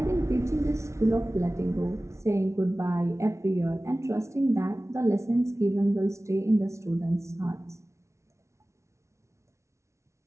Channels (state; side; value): late; left; 0.14 ms